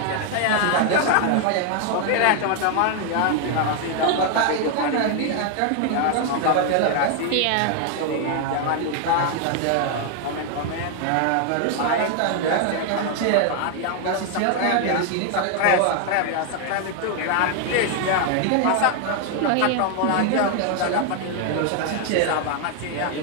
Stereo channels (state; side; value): different; both; correlation 0.00